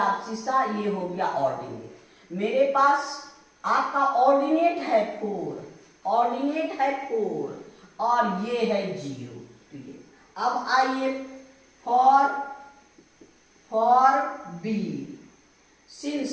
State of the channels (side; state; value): both; identical; correlation 1.00